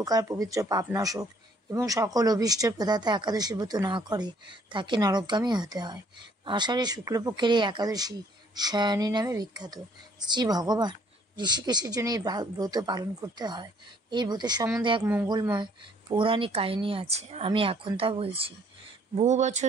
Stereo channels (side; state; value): both; normal; correlation 0.62